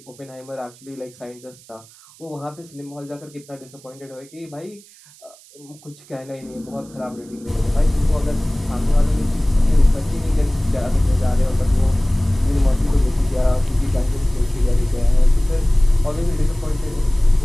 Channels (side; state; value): right; noise; hiss, 24 dB below the sound